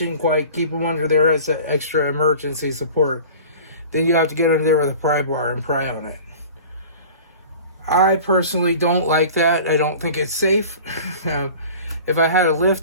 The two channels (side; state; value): both; inverted; correlation -0.40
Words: quite, keep them under there as an extra emergency support. Then you have to get under there with a pry bar and pry on it. I personally don't like that. I don't think it's safe. If I had a